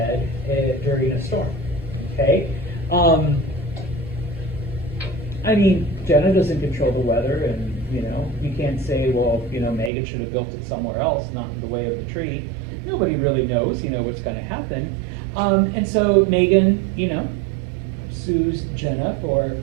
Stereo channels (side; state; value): left; drops out; at 9.9 s